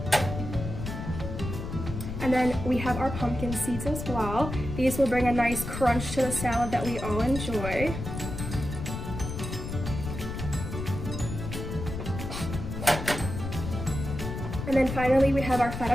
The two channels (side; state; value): left; noise; rumble, 6 dB below the sound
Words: And then we have our pumpkin seeds as well. These will bring a nice crunch to the salad that we all enjoy. And then finally we have our